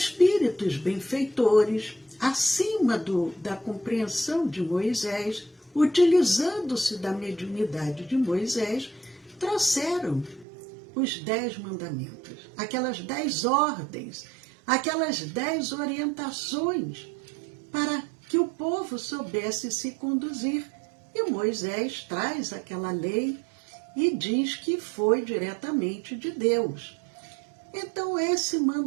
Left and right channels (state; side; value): drops out; left; at 10.5 s